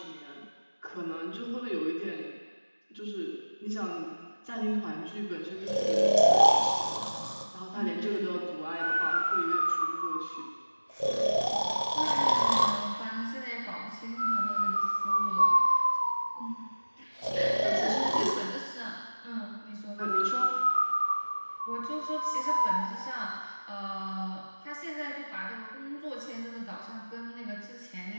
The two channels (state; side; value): inverted; both; correlation -1.00